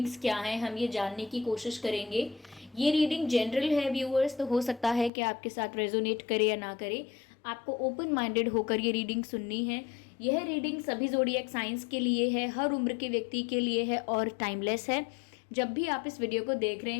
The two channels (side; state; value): right; drops out; at 5.1 s